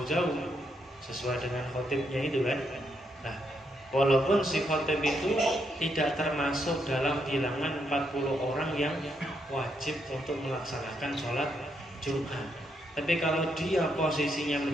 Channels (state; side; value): normal; both; correlation 0.78